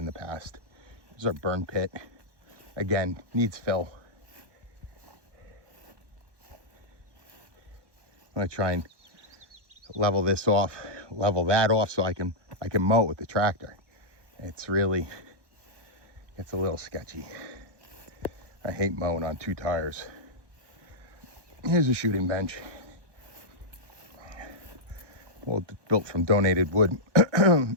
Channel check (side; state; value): left; late; 1.2 ms